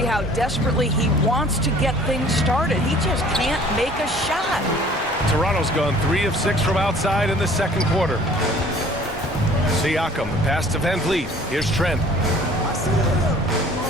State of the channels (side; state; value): both; normal; correlation 0.51